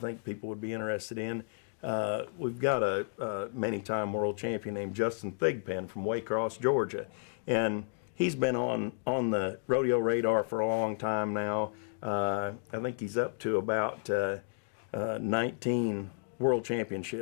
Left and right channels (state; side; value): silent; right; digital silence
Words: people would be interested in. We've got a many-time world champion named Justin Thigpen from Waycross, Georgia, and he's been on the rodeo radar for a long time now. I think he's up to about 19 world